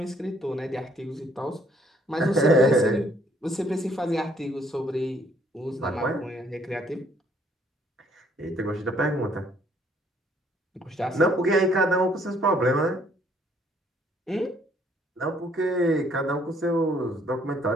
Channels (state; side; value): normal; both; correlation 0.64